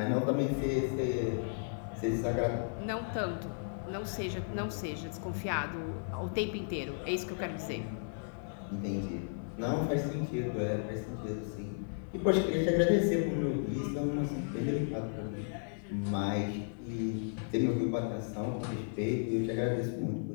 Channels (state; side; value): silent; right; digital silence